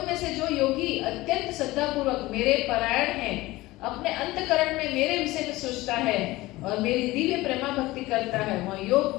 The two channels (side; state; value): right; quieter; 19.1 dB